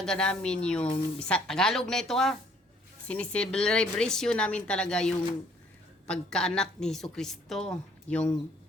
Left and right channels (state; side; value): normal; both; correlation 0.62